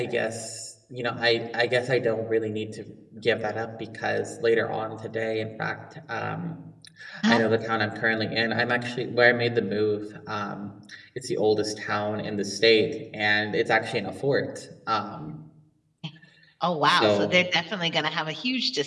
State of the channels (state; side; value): identical; both; correlation 1.00